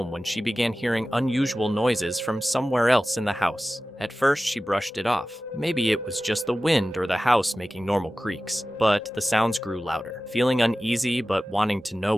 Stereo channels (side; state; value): both; normal; correlation 0.96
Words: when she began hearing unusual noises from somewhere else in the house. At first, she brushed it off. Maybe it was just the wind or the house making normal creaks. But the sounds grew louder. Feeling uneasy but wanting to know